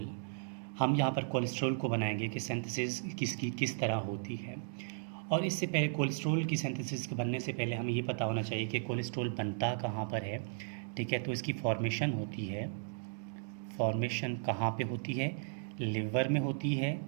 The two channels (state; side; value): silent; left; digital silence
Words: हम यहाँ पर कोलेस्ट्रॉल को बनाएंगे कि सिंथेसिस किसकी किस तरह होती है। और इससे पहले कोलेस्ट्रॉल की सिंथेसिस के बनने से पहले हमें ये पता होना चाहिए कि कोलेस्ट्रॉल बनता कहाँ पर है। ठीक है, तो इसकी फॉर्मेशन होती है। फॉर्मेशन कहाँ पे होती है? लिवर में होती है